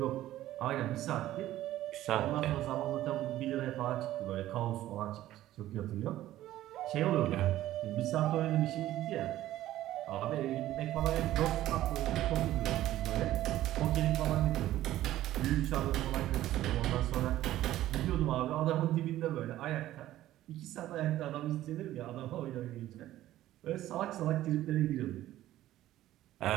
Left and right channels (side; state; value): left; quieter; 14.2 dB